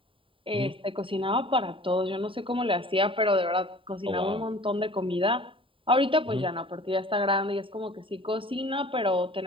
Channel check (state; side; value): late; left; 0.25 ms